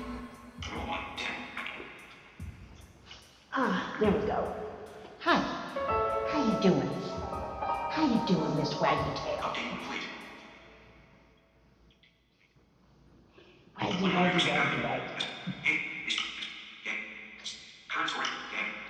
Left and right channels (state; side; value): identical; both; correlation 1.00